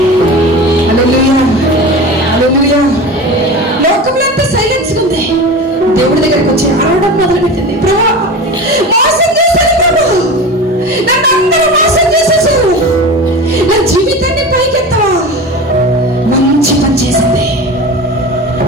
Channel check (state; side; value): normal; both; correlation 0.31